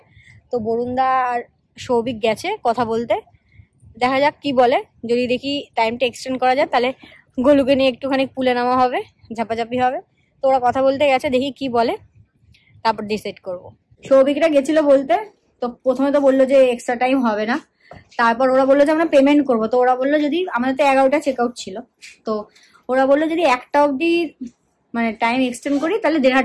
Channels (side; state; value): both; identical; correlation 1.00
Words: তো বরুণদা আর সৌভিক গেছে কথা বলতে, দেখা যাক কি বলে। যদি দেখি টাইমটা এক্সটেন্ড করা যায়, তাহলে গোলুকে নিয়ে একটুখানি পুলে নামা হবে, ঝাপাঝাপি হবে। তো ওরা কথা বলতে গেছে, দেখি কি বলে, তারপর ডিসাইড করব। সৌভিকরা গেছিল বলতে, তো প্রথমে তো বললো যে এক্সট্রা টাইম হবে না, তারপর ওরা বললো যে আমরা পেমেন্ট করবো। তো ওরা বললো যদি আমাদের তো 11টা চেক আউট ছিল, তো ওরা বললো যদি 1টা অবধি মানে টাইম এক্সটেন্ড করি তাহলে